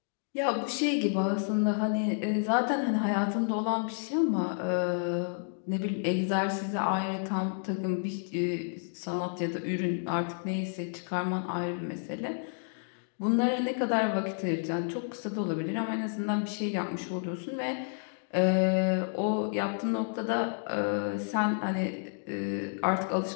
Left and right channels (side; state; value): right; silent; digital silence